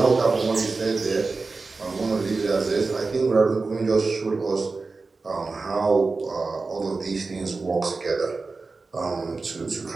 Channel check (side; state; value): left; quieter; 4.0 dB